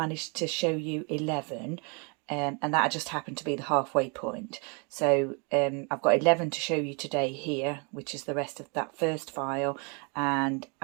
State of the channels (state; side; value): quieter; left; 34.1 dB